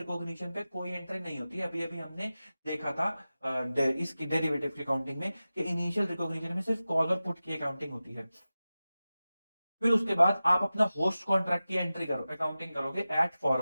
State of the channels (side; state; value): both; inverted; correlation -0.95